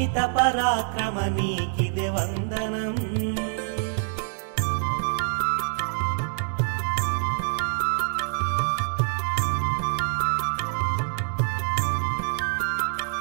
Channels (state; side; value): silent; left; digital silence